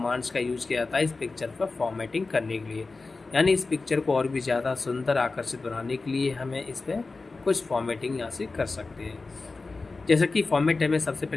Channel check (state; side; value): quieter; right; 3.8 dB